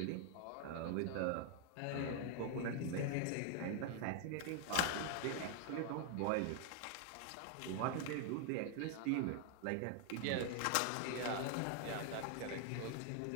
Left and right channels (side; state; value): both; different; correlation 0.00